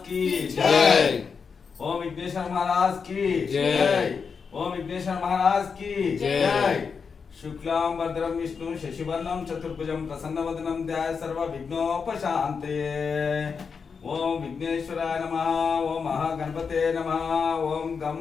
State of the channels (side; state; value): right; quieter; 5.7 dB